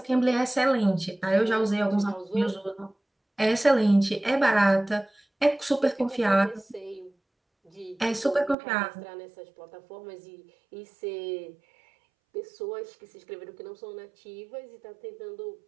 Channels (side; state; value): left; drops out; at 8.6 s